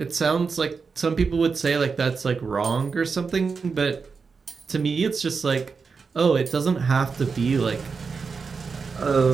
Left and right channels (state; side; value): quieter; left; 5.1 dB